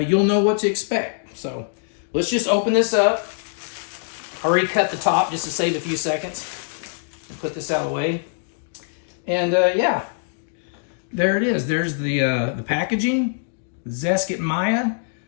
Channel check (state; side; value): silent; right; digital silence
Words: know what to expect. So let's just open this up. I already cut the top just to save a few seconds. And put this out of the way. And yeah, there it is. There's the packaging. ZESKIT Maya